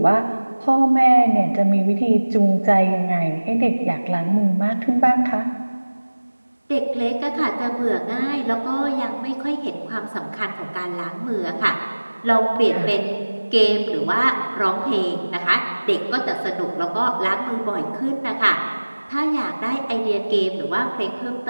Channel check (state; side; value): inverted; both; correlation -1.00